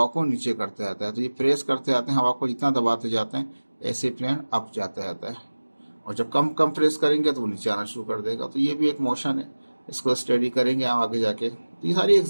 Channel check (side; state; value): both; inverted; correlation -1.00